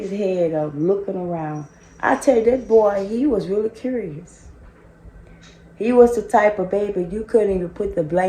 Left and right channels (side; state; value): both; identical; correlation 1.00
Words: head up, looking around. I tell you, that boy, he was really curious. He was the type of baby you couldn't even put the